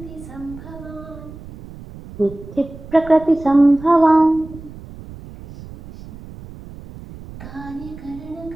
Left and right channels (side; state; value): right; noise; rumble, 16 dB below the sound